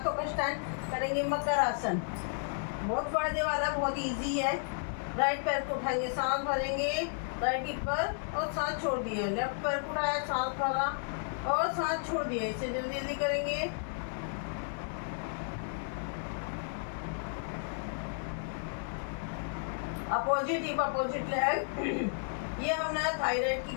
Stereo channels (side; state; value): right; silent; digital silence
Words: का स्टैंड, करेंगे मकर आसन। बहुत फायदे वाला, बहुत इजी है। राइट पैर को उठाएंगे, सांस भरेंगे राइट हिप पर और सांस छोड़ दिए। लेफ्ट पैर को उठाया, सांस भरा और सांस छोड़ दिए। इसे जल्दी जल्दी करेंगे। Opposite hip, opposite leg. ये हमने थायराइड की